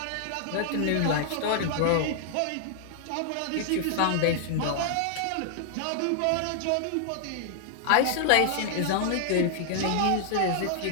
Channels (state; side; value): different; both; correlation -0.01